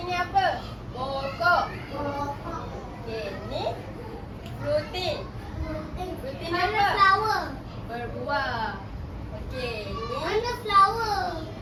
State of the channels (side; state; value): both; identical; correlation 1.00